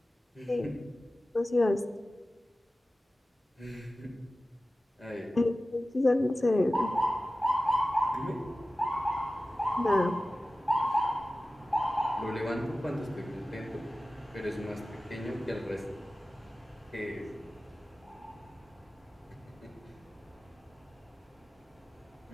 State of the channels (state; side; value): normal; both; correlation 0.96